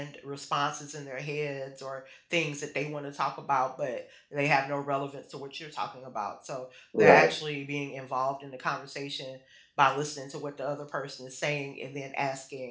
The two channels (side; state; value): both; identical; correlation 1.00